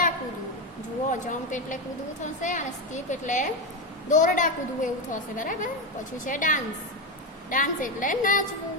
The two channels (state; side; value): normal; both; correlation 0.12